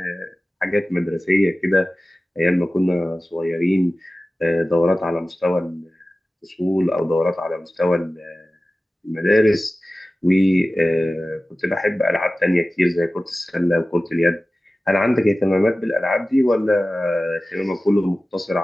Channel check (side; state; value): both; normal; correlation 0.96